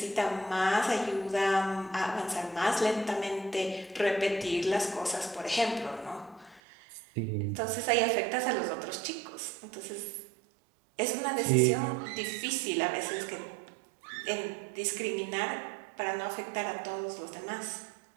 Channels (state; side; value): drops out; left; at 6.6 s